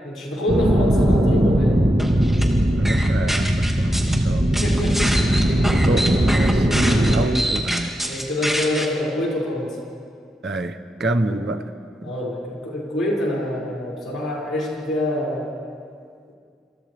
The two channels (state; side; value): normal; both; correlation 0.85